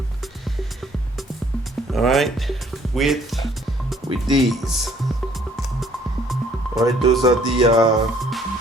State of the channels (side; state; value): both; normal; correlation 0.61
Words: All right, with these. All right, those are the